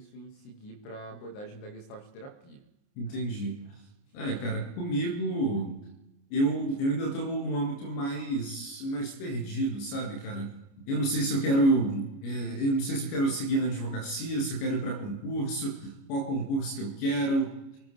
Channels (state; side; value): late; right; 29 ms